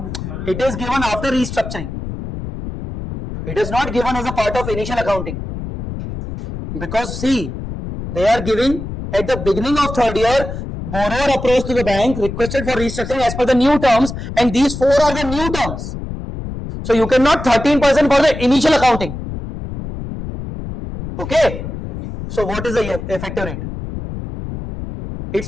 It is given after restructuring. It is not given as a part of initial accounting. Because see, they are giving at the beginning of third year borrower approached to the bank, requested for restructuring as per the new terms, and these four are the new terms. So you cannot 13% for the initial accounting. Okay. So what is the effective rate?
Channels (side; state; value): left; noise; rumble, 8 dB below the sound